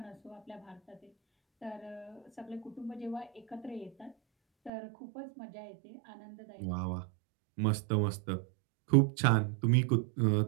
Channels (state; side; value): drops out; left; at 4.7 s